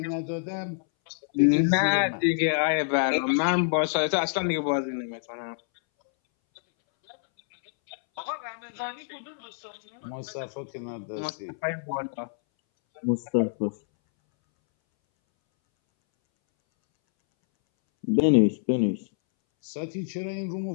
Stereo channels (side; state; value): right; silent; 60 dB below the other